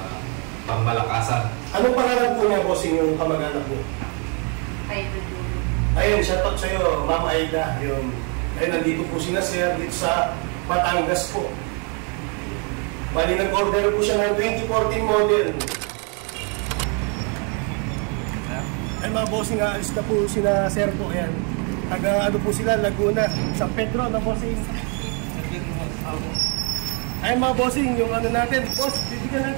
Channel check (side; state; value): left; quieter; 36.5 dB